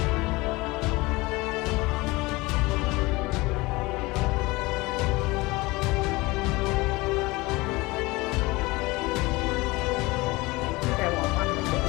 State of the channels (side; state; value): right; quieter; 22.4 dB